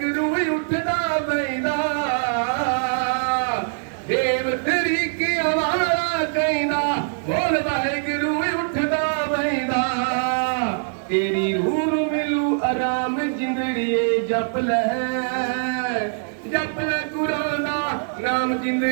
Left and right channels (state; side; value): silent; left; digital silence